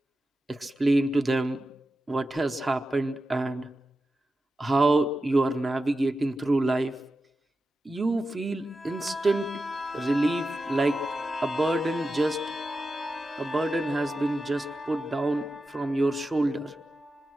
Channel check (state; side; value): normal; both; correlation 0.91